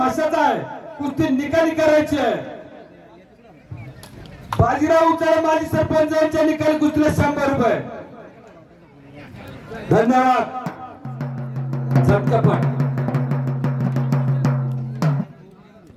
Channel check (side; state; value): both; identical; correlation 1.00